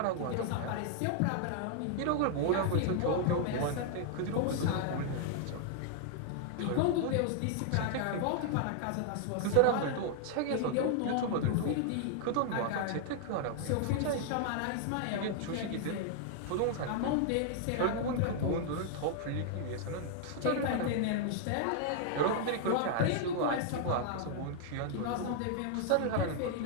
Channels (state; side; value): different; both; correlation -0.01